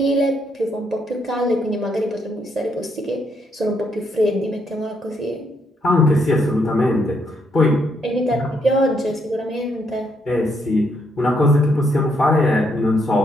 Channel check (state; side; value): normal; both; correlation 0.75